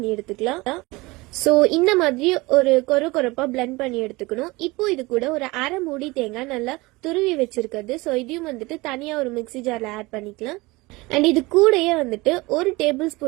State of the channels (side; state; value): left; quieter; 22.6 dB